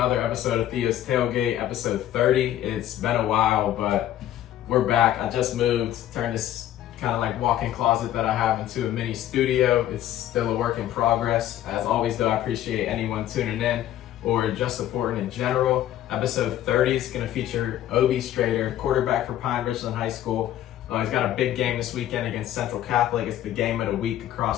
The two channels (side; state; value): right; quieter; 12.3 dB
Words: episode of Theo's Tailgate, episode 30. It's been a while, but we're back. I just moved, turned this kind of like walk-in closet that I have into a mini studio. It's still a work in progress. As always though, I appreciate anyone tuning in or just supporting in general. Episode 30 is going to feature Oobi Strader, quarterback for Pine Richland High School. He's got a big game this weekend against Central Catholic. It's the game of the week